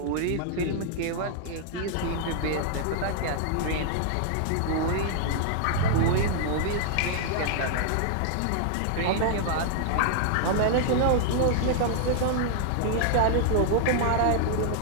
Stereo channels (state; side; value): different; both; correlation -0.01